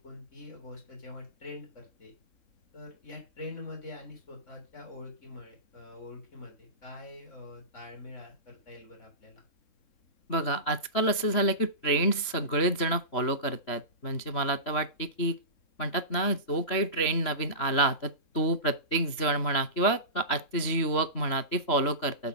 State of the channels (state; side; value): late; right; 3.7 ms